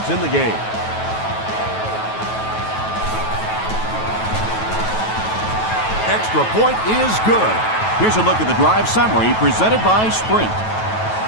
in the game. Extra point is good. Here's a look at the drive summary presented by Sprint.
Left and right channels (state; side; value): late; right; 9.2 ms